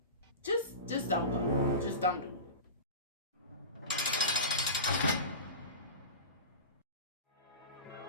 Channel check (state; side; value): inverted; both; correlation -0.30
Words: just don't go. Just don't do it.